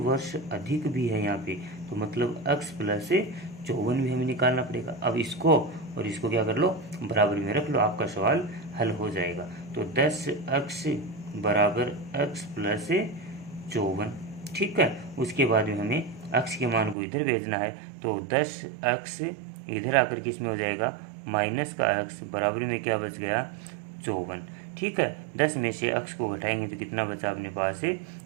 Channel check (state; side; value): drops out; left; at 16.9 s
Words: अधिक भी है यहाँ पे, तो मतलब x प्लस 54 भी हमें निकालना पड़ेगा। अब इसको और इसको क्या कर लो, बराबर में रख लो, आपका सवाल हल हो जाएगा। तो 10x बराबर x प्लस 54, ठीक है। उसके बाद में हमें x के मान को इधर भेजना है, तो 10x इधर आकर किस में हो जाएगा, माइनस का x बराबर में क्या बच गया, 54, ठीक है। 10 में से x को घटाएंगे तो कितना बचा अपने पास है,